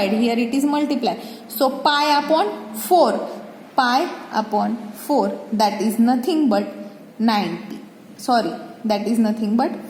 Here it is multiply. So pi upon 4. That is nothing but 90. Sorry, that is nothing but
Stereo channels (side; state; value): both; identical; correlation 1.00